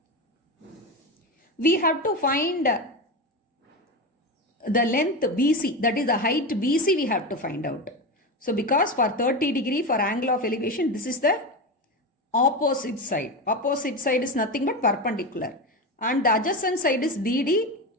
we have to find the length BC, that is the height BC we have to find out. So because for 30 degree for angle of elevation, this is the opposite side. Opposite side is nothing but perpendicular. And the adjacent side is BD.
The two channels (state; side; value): normal; both; correlation 0.19